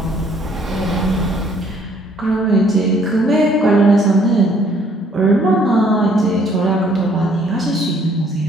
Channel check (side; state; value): both; normal; correlation 0.62